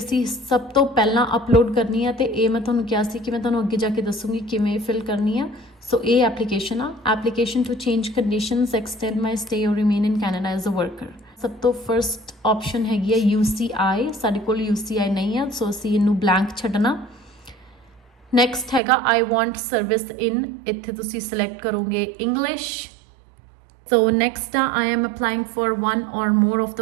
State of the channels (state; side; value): drops out; left; at 18.8 s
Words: ਸਭ ਤੋਂ ਪਹਿਲਾਂ ਅਪਲੋਡ ਕਰਨੀ ਆ ਤੇ ਇਹ ਮੈਂ ਤੁਹਾਨੂੰ ਕਿਹਾ ਸੀ ਕਿ ਮੈਂ ਤੁਹਾਨੂੰ ਅੱਗੇ ਜਾ ਕੇ ਦੱਸੂਗੀ ਕਿਵੇਂ ਫਿਲ ਕਰਨੀ ਆ। ਸੋ ਇਹ ਐਪਲੀਕੇਸ਼ਨ ਆ, application to change conditions, extend my stay or remain in Canada as a worker. ਸਭ ਤੋਂ ਫਰਸਟ ਆਪਸ਼ਨ ਹੈਗੀ ਆ UCI। ਸਾਡੇ ਕੋਲ UCI ਨਹੀਂ ਆ ਸੋ ਅਸੀਂ ਇਹਨੂੰ ਬਲੈਂਕ ਛੱਡਣਾ। ਨੈਕਸਟ ਹੈਗਾ ਆਈ ਵਾਂਟ ਸਰਵਿਸ ਇਨ, ਇੱਥੇ ਤੁਸੀਂ ਸਿਲੈਕਟ ਕਰੋਗੇ ਇੰਗਲਿਸ਼। ਸੋ ਨੈਕਸਟ ਆ I am applying for one or more of